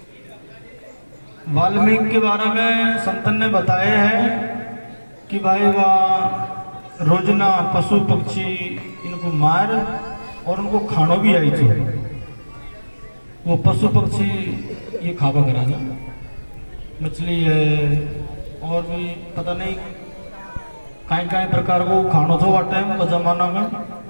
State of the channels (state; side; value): inverted; both; correlation -1.00